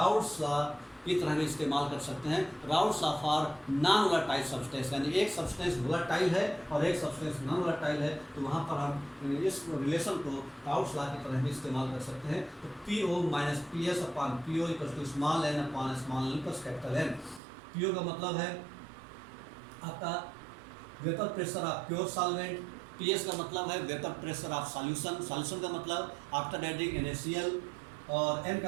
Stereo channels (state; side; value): drops out; left; at 17.4 s